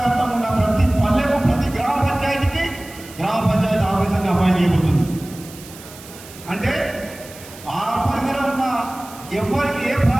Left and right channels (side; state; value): right; noise; hiss, 18 dB below the sound